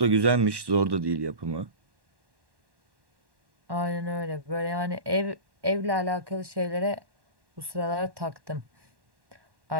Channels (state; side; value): late; left; 1.1 ms